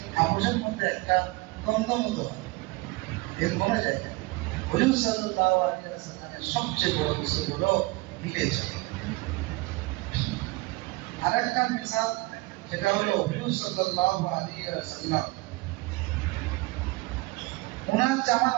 আপোষের মধ্যে একটা দ্বন্দ্ব মতো এর কোনো জায়গা হুজুর সাল্লাল্লাহু আলাইহি ওয়াসাল্লামের সবচেয়ে বড় উসুল হলো মিলে ঝুলে আরেকটা মিসাল সেটা হলো হুজুর সাল্লাল্লাহু আলাইহি ওয়াসাল্লাম ওনার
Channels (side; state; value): left; quieter; 23.0 dB